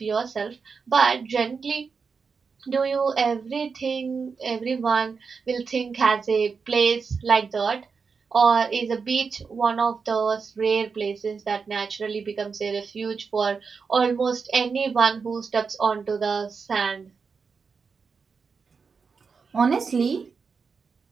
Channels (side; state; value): left; quieter; 5.3 dB